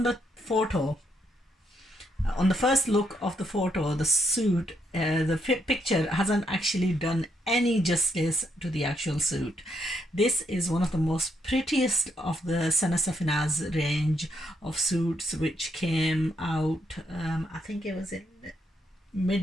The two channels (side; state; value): both; normal; correlation 0.76